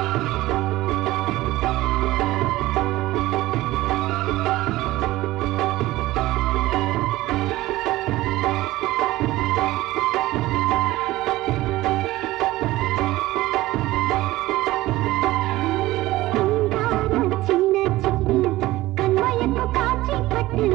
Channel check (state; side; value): quieter; left; 17.5 dB